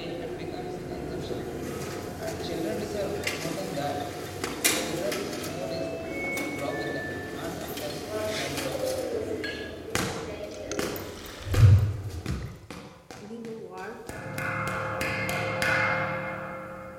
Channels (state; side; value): identical; both; correlation 1.00